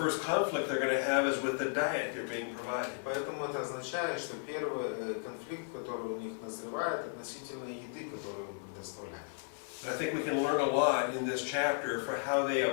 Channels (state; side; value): silent; right; digital silence